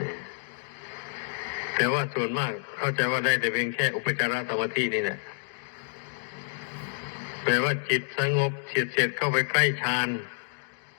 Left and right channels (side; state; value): right; silent; digital silence